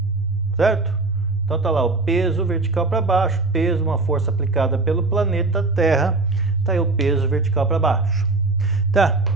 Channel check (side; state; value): left; quieter; 3.4 dB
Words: certo? Então tá lá o peso vertical para baixo, peso, uma força aplicada pelo planeta Terra, tá aí o peso vertical para baixo. Tá,